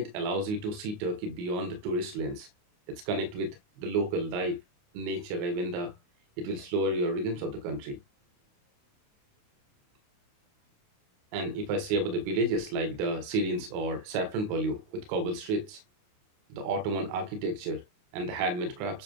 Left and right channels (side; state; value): left; late; 28 ms